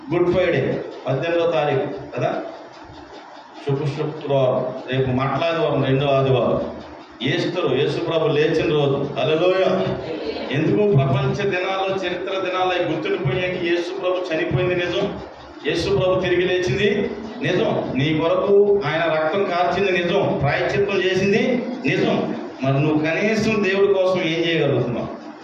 గుడ్ ఫ్రైడే 18వ తారీఖు కదా, శుక్రవారం, రేపు మట్లాదివారం, 2వ ఆదివారం, ఈస్టర్, యేసు ప్రభు లేచిన రోజు. హల్లెలూయా. ఎందుకు? ప్రపంచ దినాల్లో, చరిత్ర దినాల్లో గుర్తుండిపోయాక యేసు ప్రభు చనిపోయింది నిజం, యేసు ప్రభు తిరిగి లేచింది నిజం, నీ కొరకు ఆయన రక్తం కార్చింది నిజం, ప్రాయశ్చిత్తం చేసింది నిజం. మరి నువ్వు కనీసం దేవుడి కోసం ఏం చేయగలుగుతున్నావు?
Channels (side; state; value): both; identical; correlation 1.00